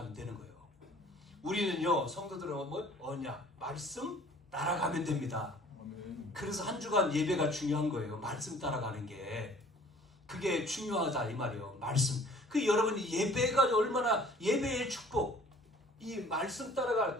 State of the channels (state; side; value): normal; both; correlation 0.52